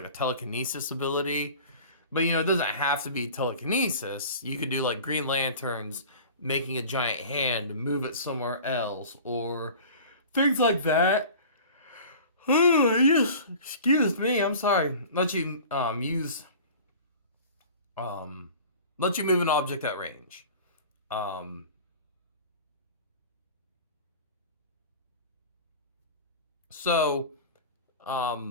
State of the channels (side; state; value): both; inverted; correlation -0.40